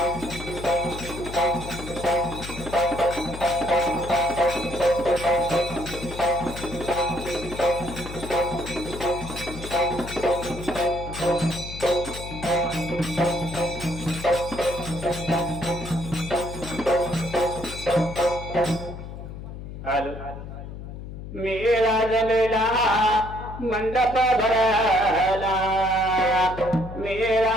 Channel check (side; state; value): left; noise; hum, 10 dB below the sound